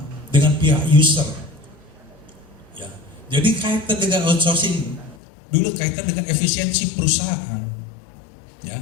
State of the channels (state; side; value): drops out; right; at 5.2 s